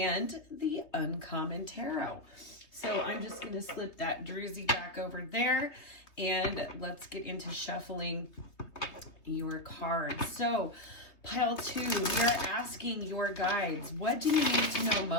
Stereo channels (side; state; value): right; late; 3.2 ms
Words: the Uncommon Tarot. So I'm just going to slip that Druzy back over there, and let's get into shuffling your cards. So pile two, we are asking your guides, what do you need to know